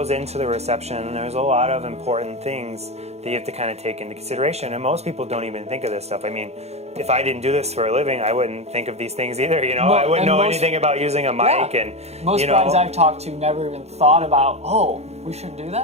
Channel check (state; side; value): late; left; 0.31 ms